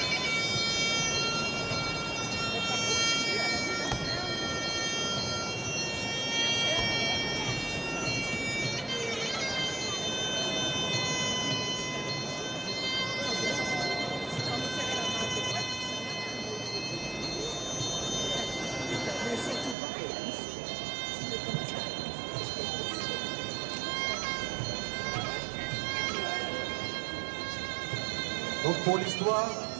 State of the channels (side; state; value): left; drops out; at 19.8 s